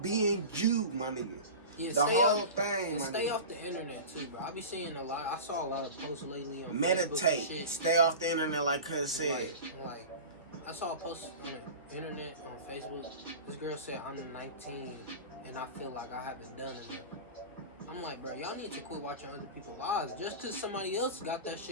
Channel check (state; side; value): inverted; both; correlation -0.31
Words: being you, my nigga. Yeah, the whole thing, my stay nigga. off the internet too, bro. I be seeing a lot. I saw a lot of posts lately on Facebook and Meditate. shit. Stay off the internet, like Cuz said. Like, I saw a post on the internet on Facebook. This girl said, I'm 19 and I feel like I haven't done enough. I'm like, bro, y'all need to quit watching other people's lives. Just because somebody else got that